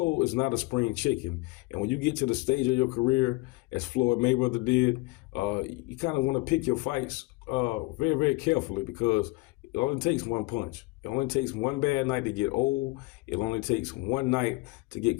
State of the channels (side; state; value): right; quieter; 22.8 dB